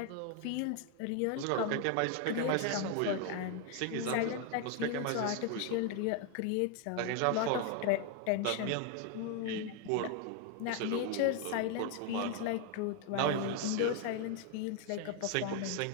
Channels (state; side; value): different; both; correlation 0.01